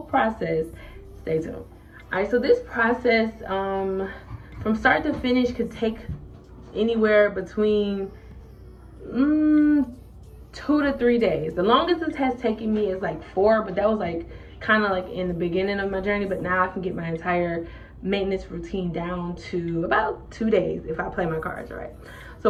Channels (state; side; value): identical; both; correlation 1.00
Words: process, stay tuned. All right, so this process from start to finish could take anywhere between 2 to 3 days. The longest this has taken me is like 4, but that was like kind of like in the beginning of my journey. But now I can get my entire maintenance routine down to about 2 days if I play my cards right.